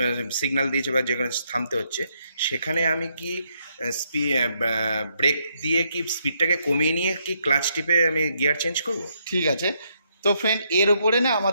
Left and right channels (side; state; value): both; inverted; correlation -0.76